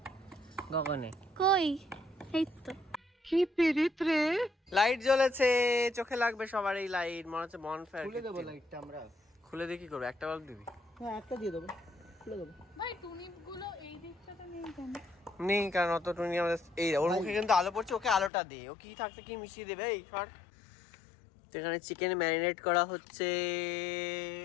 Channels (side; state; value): right; drops out; at 18.3 s